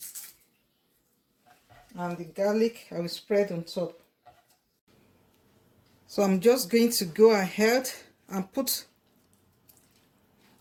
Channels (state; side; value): identical; both; correlation 1.00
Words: And the garlic, I will spread on top. So I'm just going to go ahead and put